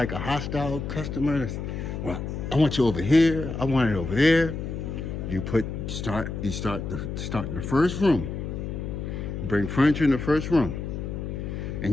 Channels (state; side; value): noise; left; hum, 5 dB below the sound